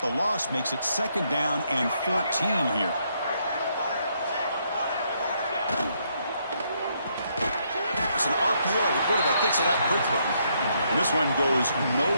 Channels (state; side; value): inverted; both; correlation -0.74